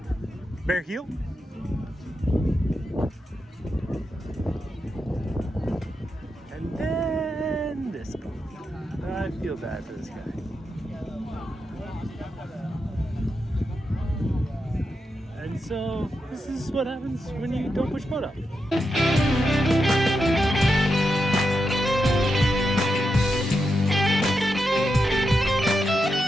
Bear heel. And then this boat. I feel bad for this guy. And so this is what happens when you don't push boat up.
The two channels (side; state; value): both; normal; correlation 0.86